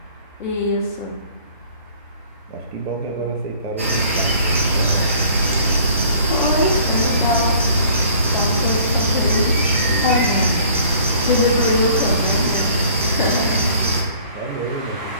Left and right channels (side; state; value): both; inverted; correlation -0.53